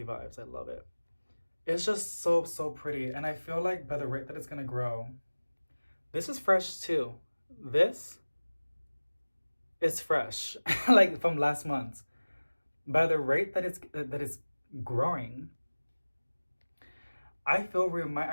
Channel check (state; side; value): inverted; both; correlation -1.00